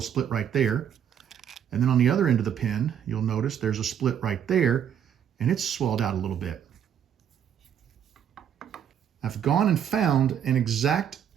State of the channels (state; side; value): quieter; left; 9.0 dB